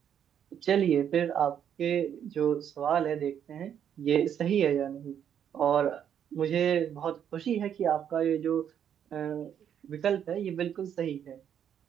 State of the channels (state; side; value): quieter; left; 9.0 dB